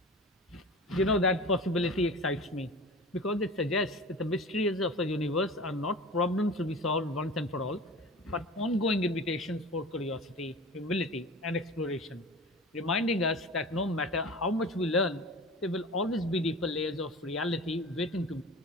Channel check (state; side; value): normal; both; correlation 0.36